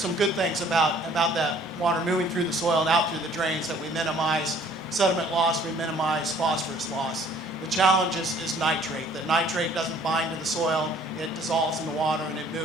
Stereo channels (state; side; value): normal; both; correlation 0.56